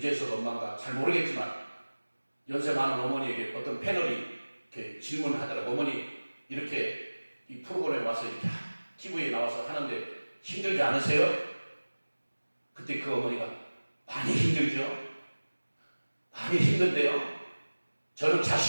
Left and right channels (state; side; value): inverted; both; correlation -1.00